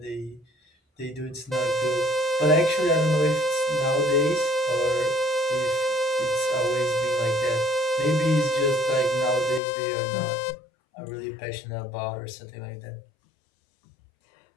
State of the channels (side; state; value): right; drops out; at 9.6 s